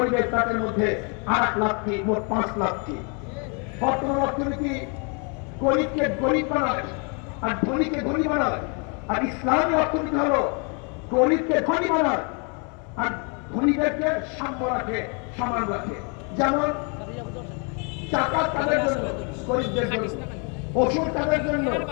তাদের মধ্যে 8 লাথি, মোট 5 লাথি। বর্তমান অর্থনীতি গরিবকে গরিব বানায় আর ধনীকে ধনী বানায়, আর ইসলামী অর্থনীতি হলো গরিবকে ধনী বানায় আর ধনীদেরকে সাম্য রাখে, সমান রাখে। যেমন জাকাত তাদের জন্য, গরিবদের জন্য; ওষুধ তাদের জন্য,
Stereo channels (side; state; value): right; quieter; 36.1 dB